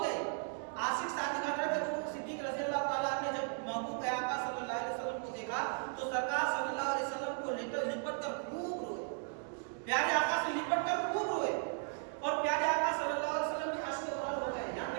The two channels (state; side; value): silent; left; 54 dB below the other